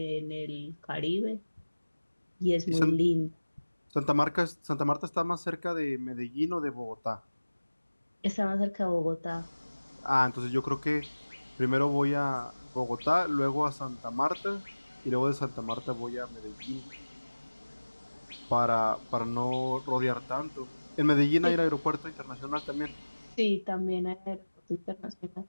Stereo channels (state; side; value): inverted; both; correlation -1.00